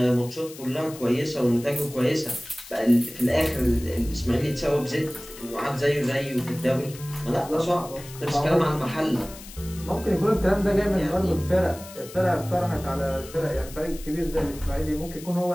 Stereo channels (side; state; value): left; noise; hiss, 16 dB below the sound